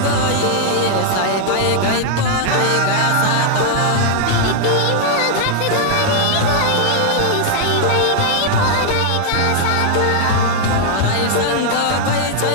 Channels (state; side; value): different; both; correlation -0.01